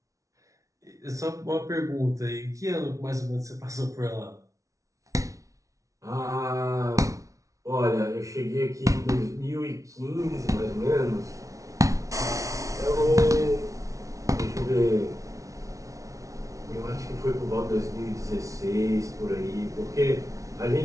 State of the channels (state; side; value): late; left; 0.16 ms